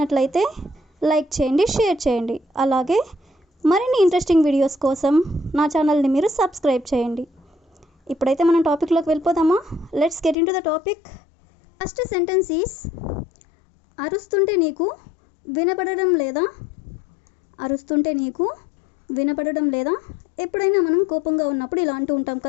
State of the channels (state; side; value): drops out; right; at 10.4 s